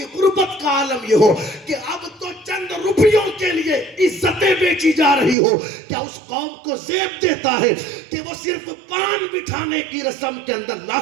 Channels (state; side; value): drops out; left; at 5.4 s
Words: غربت کا عالم یہ ہو کہ اب تو چند روپیوں کے لیے عزتیں بیچی جا رہی ہو، کیا اس قوم کو زیب دیتا ہے کہ وہ صرف پان بٹھانے کی رسم کے اندر